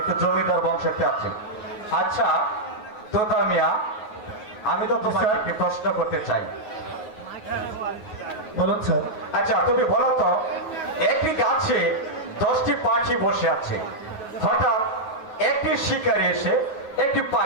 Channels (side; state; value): right; late; 9.4 ms